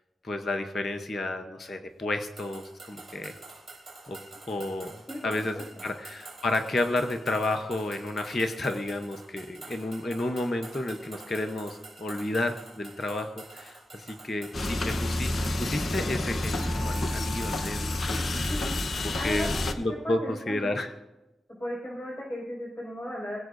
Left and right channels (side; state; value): both; normal; correlation 0.88